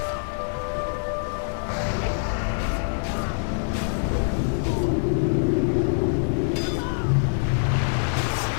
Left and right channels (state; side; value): silent; right; digital silence